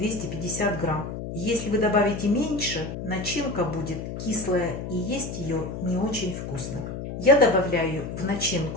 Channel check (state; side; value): noise; left; hum, 7 dB below the sound